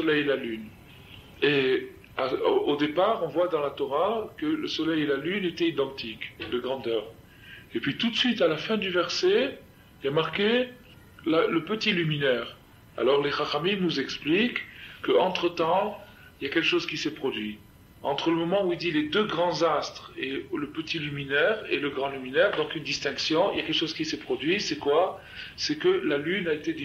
et la lune. Et au départ, on voit dans la Torah que le soleil et la lune étaient identiques de grandeur. Et puis tout de suite, à la fin du verset, il y a marqué le petit luminaire. Alors les Chachamim nous expliquent qu'entre-temps, il y a quelque chose qui s'est produit. Entre le moment où il dit les 2 grands astres et le petit luminaire et le grand luminaire, donc une distinction, il y a quelque chose qui s'est produit, c'est quoi? C'est que la lune a été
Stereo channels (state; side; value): identical; both; correlation 1.00